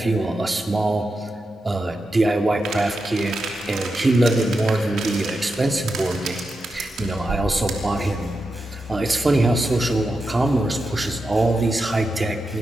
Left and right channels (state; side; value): normal; both; correlation 0.88